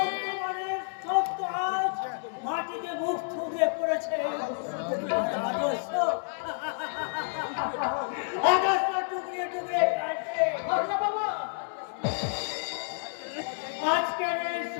সত্য আজ মাটিতে মুখ থুবড়ে পড়েছে। আদর্শ টুকরে টুকরে কাটছে। বাবা আজকের এই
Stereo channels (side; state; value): right; silent; digital silence